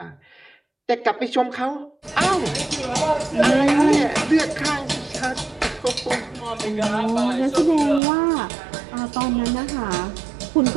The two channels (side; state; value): left; drops out; at 8.0 s